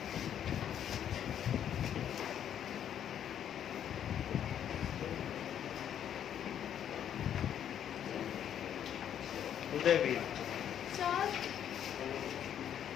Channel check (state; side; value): quieter; right; 9.6 dB